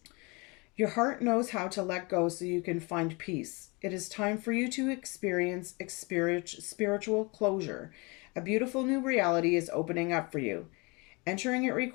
Your heart knows how to let go so you can find peace. It is time for you to experience spiritual closure. A beautiful new reality is opening up for you. Entering it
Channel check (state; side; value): quieter; right; 28.0 dB